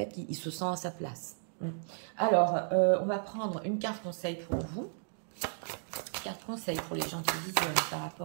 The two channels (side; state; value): left; silent; digital silence